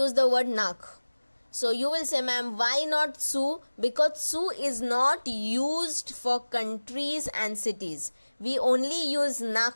the word nach. So you will say, ma'am, why not zu? Because zu is not used for countries and cities. We only use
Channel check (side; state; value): both; inverted; correlation -1.00